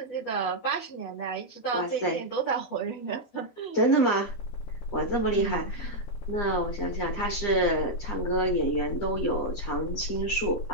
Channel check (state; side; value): late; right; 12 ms